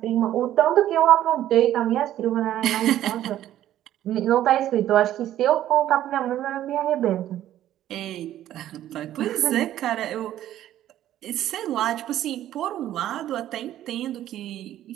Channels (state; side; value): quieter; left; 12.5 dB